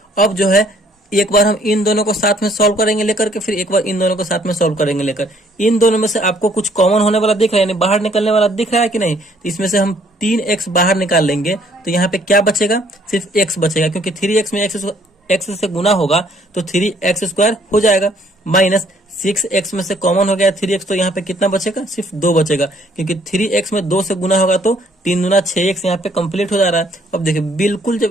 अब जो है एक बार हम इन दोनों को साथ में सॉल्व करेंगे लेकर के, फिर एक बार इन दोनों को साथ में सॉल्व करेंगे लेकर। इन दोनों में से आपको कुछ कॉमन होने वाला दिख रहा है, यानी बाहर निकलने वाला दिख रहा है कि नहीं। तो इसमें से हम 3x बाहर निकाल लेंगे, तो यहाँ पे क्या बचेगा, सिर्फ x बचेगा, क्योंकि 3x में x से गुना होगा तो 3x² हो जाएगा। माइनस 6x में से कॉमन हो गया 3x, तो यहाँ पे कितना बचेगा, सिर्फ 2 बचेगा, क्योंकि 3x में 2 से गुना होगा तो 3 दूना 6x यहाँ पे कंप्लीट हो जा रहा है। अब देखिए बिल्कुल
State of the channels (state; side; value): normal; both; correlation 0.63